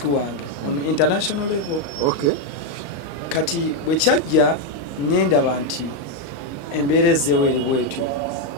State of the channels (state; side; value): late; right; 35 ms